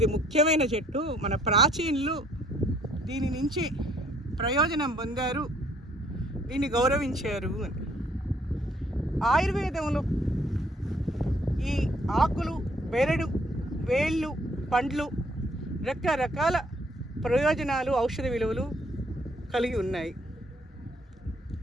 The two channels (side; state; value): both; normal; correlation 0.64